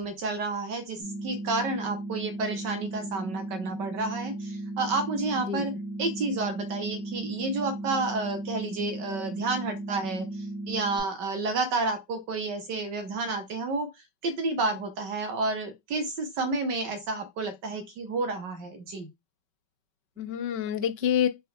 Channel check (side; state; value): left; late; 5.3 ms